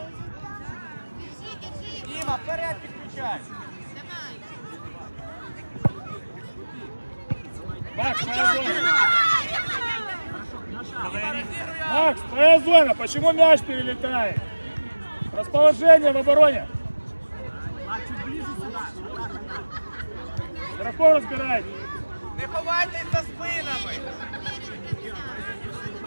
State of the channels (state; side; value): inverted; both; correlation -1.00